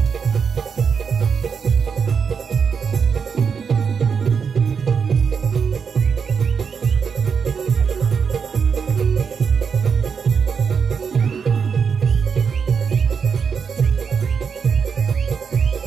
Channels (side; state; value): left; quieter; 6.2 dB